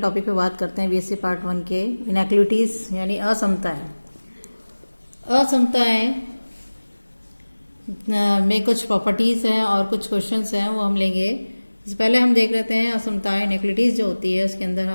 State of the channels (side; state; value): both; inverted; correlation -1.00